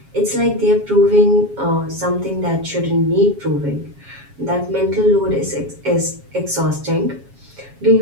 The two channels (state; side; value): late; left; 7.3 ms